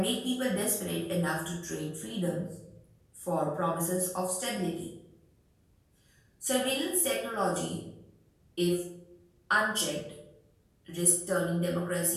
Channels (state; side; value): identical; both; correlation 1.00